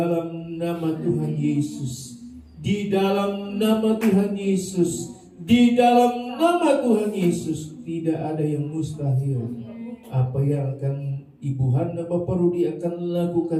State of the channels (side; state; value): both; identical; correlation 1.00